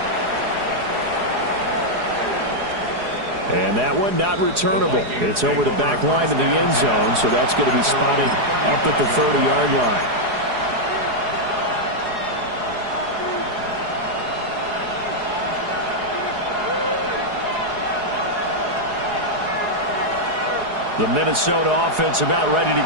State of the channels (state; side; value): late; left; 4.8 ms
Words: And that one not returnable. It's over the back line to the end zone, so that's going to be spotted up at the 30-yard line. The Minnesota offense about ready to